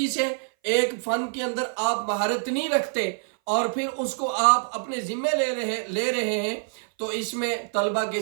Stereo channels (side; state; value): left; silent; 58 dB below the other